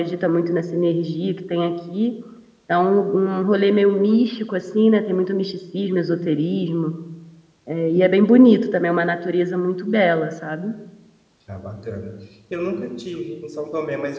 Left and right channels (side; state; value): both; identical; correlation 1.00